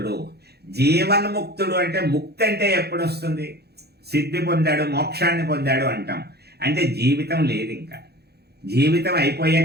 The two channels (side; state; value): left; late; 0.47 ms